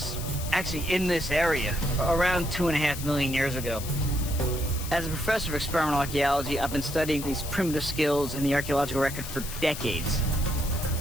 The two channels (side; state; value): left; noise; hiss, 10 dB below the sound